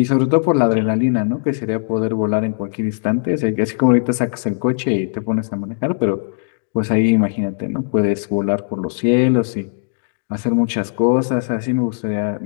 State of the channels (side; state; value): right; silent; digital silence